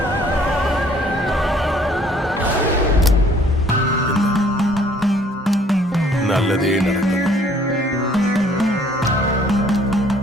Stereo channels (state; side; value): normal; both; correlation 0.59